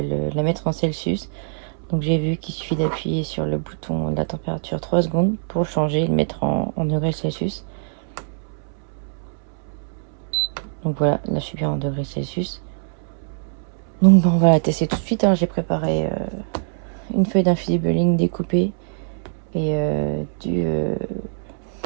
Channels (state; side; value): silent; left; 63 dB below the other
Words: la mettre en Celsius. Donc j'ai vu qu'il suffit d'appuyer sur le bouton de la température 3 secondes pour changer et le mettre en degrés Celsius. Donc voilà, là je suis bien en degrés Celsius. Donc on va la tester tout de suite, hein. J'ai préparé une feuille d'infusible link découpée et